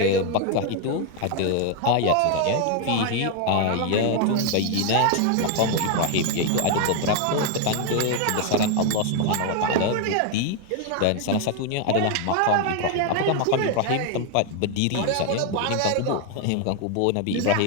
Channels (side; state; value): both; different; correlation 0.00